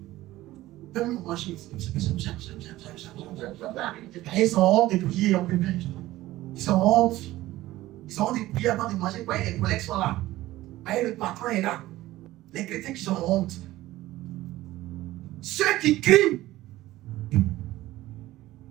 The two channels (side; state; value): left; quieter; 16.5 dB